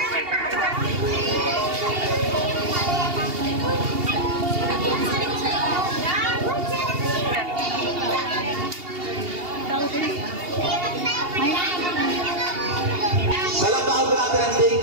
Palapakan po natin ang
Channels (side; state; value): left; late; 2.8 ms